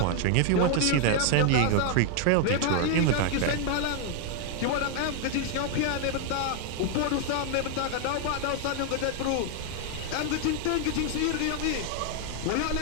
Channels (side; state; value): both; different; correlation 0.00